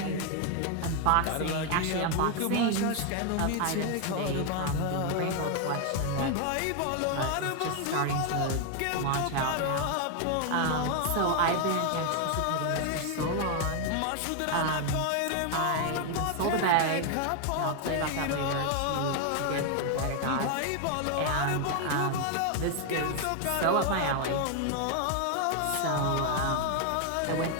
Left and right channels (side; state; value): both; different; correlation 0.01